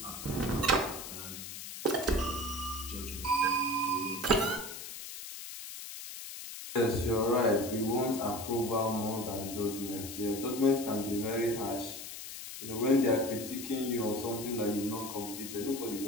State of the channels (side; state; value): left; noise; hiss, 10 dB below the sound